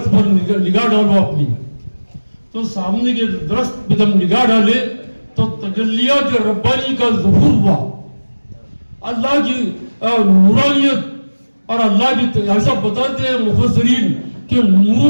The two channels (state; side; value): inverted; both; correlation -1.00